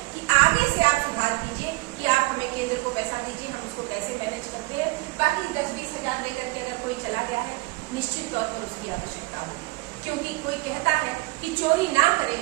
चोरी ना करें,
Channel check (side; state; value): left; quieter; 23.6 dB